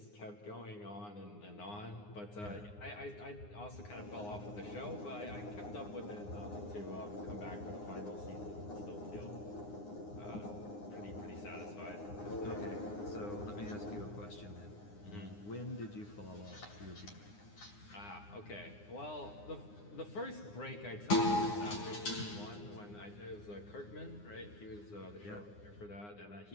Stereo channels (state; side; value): late; right; 9.7 ms